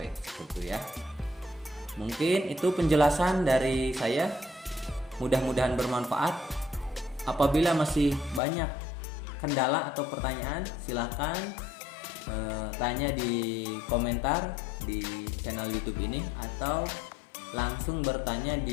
seperti ya. Mungkin itu penjelasan dari saya, mudah-mudahan bermanfaat. Apabila masih banyak kendala atau pertanyaan, silahkan tanya di komentar di channel YouTube ini, atau langsung bertanya di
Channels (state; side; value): drops out; right; at 8.4 s